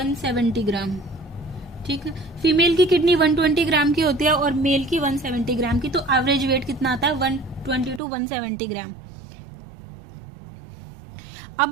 ग्राम। ठीक है, फीमेल की किडनी 120 ग्राम की होती है और मेल की 170 ग्राम की, तो एवरेज वेट कितना आता है? 120 to 170 ग्राम।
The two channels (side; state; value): left; drops out; at 8.0 s